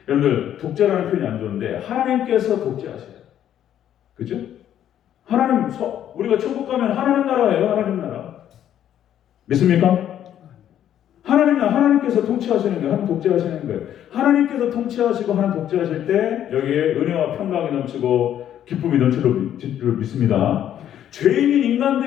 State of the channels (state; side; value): quieter; right; 10.7 dB